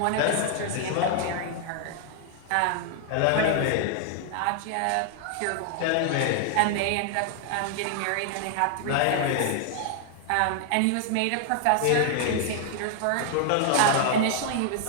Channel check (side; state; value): both; different; correlation 0.00